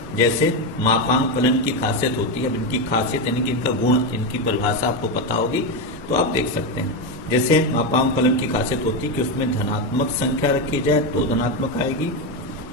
जैसे मापांक फलन की खासियत होती है। अब इनकी खासियत यानी कि इनका गुण, इनकी परिभाषा आपको पता होगी तो आप देख सकते हैं। जैसे मापांक फलन की खासियत होती है कि उसमें धनात्मक संख्या रखी जाए तो धनात्मक आएगी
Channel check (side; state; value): both; normal; correlation 0.10